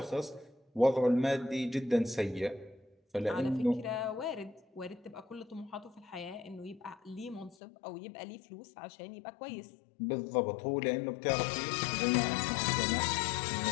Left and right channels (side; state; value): right; drops out; at 7.6 s